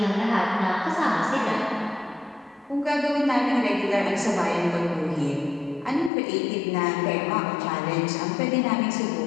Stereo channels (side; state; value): right; drops out; at 6.1 s